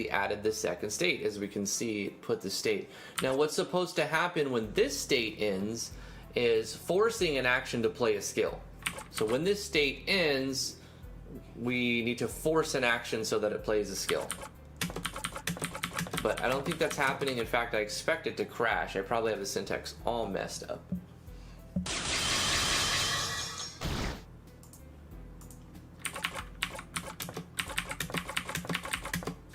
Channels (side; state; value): both; identical; correlation 1.00